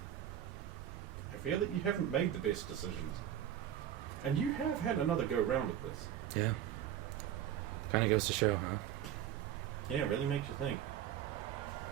you haven't made the best decisions. And you have had another go round at this. Yeah. Kind of goes to show, huh? Yeah, it really makes you think.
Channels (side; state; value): left; quieter; 10.7 dB